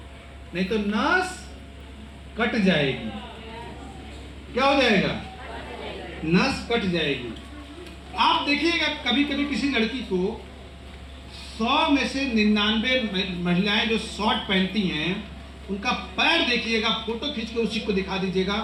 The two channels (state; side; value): identical; both; correlation 1.00